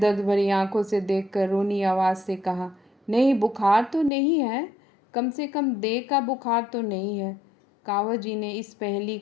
भरी आंखों से देखकर रोनी आवाज़ से कहा, नहीं, बुखार तो नहीं है, कम से कम देह का बुखार तो नहीं है। कावस जी ने इस पहेली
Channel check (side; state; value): right; drops out; at 4.1 s